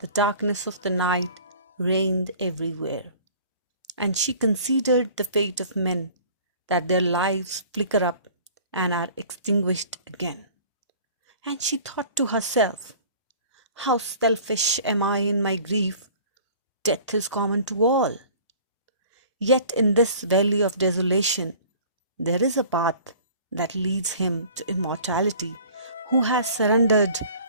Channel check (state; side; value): inverted; both; correlation -0.48